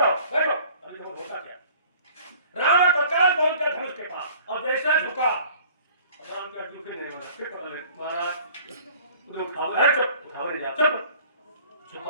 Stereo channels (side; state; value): both; inverted; correlation -0.50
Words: बैठो, अभी देखो होता क्या। रावण तत्काल पहुंच गया धनुष के पास, और जैसे झुका, राम का झुके नहीं वाला, फिर पकड़ ले महाराज, उठाओ ले जा, चुप